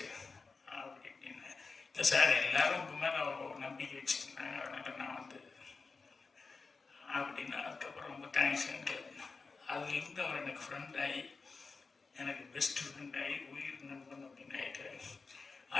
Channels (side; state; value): right; quieter; 4.3 dB